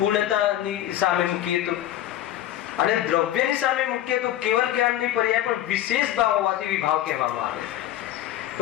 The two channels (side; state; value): right; quieter; 12.7 dB